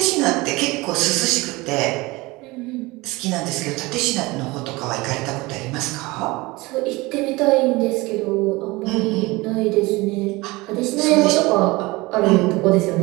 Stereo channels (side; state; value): left; quieter; 22.4 dB